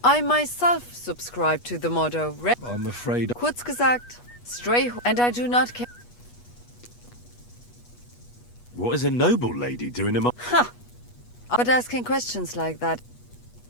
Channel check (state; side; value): late; right; 8.3 ms